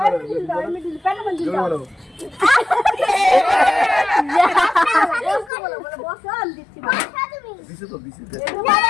দিছে তো দিছে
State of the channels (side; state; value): right; drops out; at 5.5 s